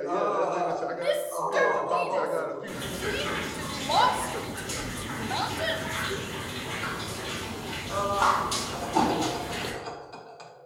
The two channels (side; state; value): both; identical; correlation 1.00